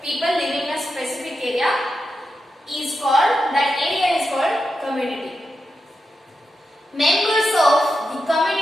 People living in a specific area is called, that area is called community. Members of the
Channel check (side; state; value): both; normal; correlation 0.88